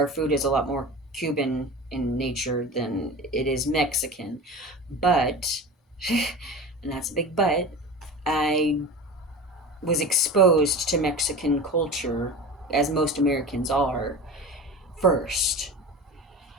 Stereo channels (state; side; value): normal; both; correlation 0.32